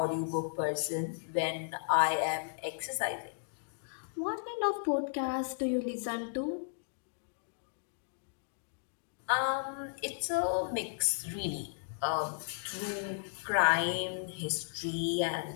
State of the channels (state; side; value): silent; right; digital silence